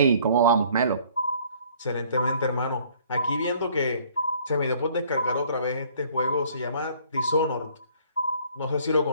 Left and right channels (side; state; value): both; inverted; correlation -0.57